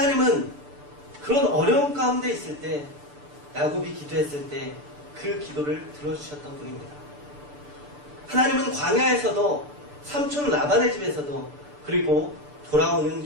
그런 어려움 가운데 있을 때, 야곱이 기도했을 때 그 기도를 들어주셨던 분입니다. 하나님은 광야에서도, 삼촌 라반의 집에서도, 그리고 돌아오는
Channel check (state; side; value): late; left; 6.8 ms